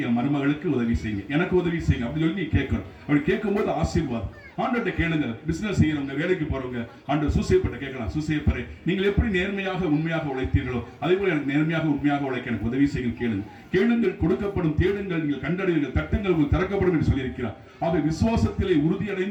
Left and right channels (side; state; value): both; identical; correlation 1.00